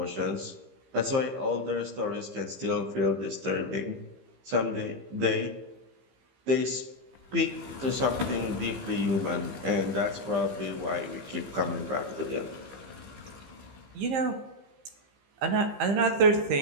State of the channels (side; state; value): left; late; 15 ms